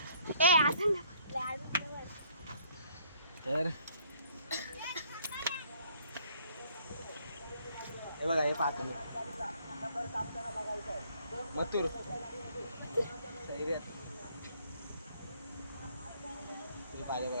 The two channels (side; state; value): both; inverted; correlation -0.63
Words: तर हे बघा, हे पाहतो मी मथुर सैर्यात हे पाहिजे